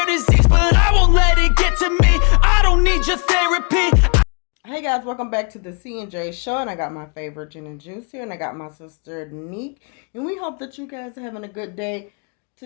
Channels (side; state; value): right; quieter; 36.7 dB